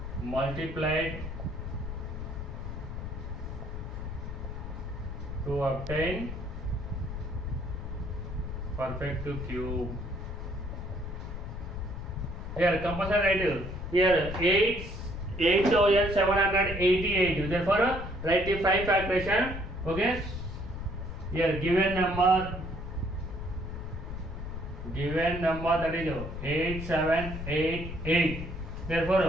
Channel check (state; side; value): noise; left; rumble, 7 dB below the sound